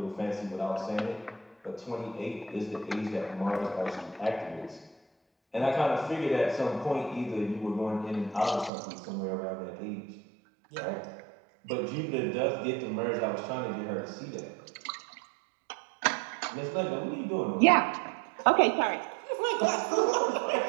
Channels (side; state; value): left; drops out; at 8.7 s